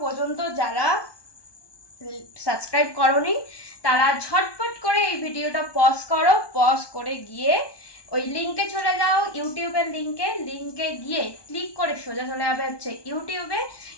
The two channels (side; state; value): right; late; 1.2 ms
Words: পর্যন্ত যারা সাবস্ক্রাইব করোনি তারা ঝটপট করে এই ভিডিওটা পজ করো, পজ করে গিয়ে ওই লিঙ্কে চলে যাও, ইউটিউবের লিঙ্কে গিয়ে ক্লিক করে সোজা চলে যাবে হচ্ছে ইউটিউবে,